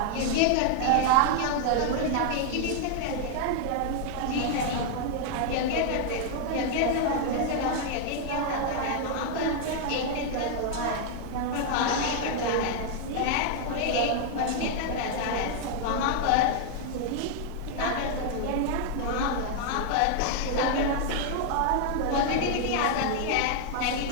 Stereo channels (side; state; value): both; different; correlation 0.00